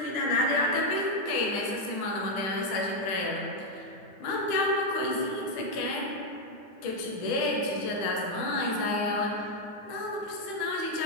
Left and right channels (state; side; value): late; right; 10 ms